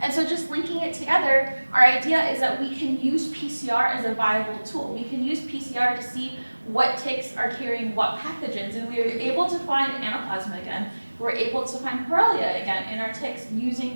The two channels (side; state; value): both; inverted; correlation -1.00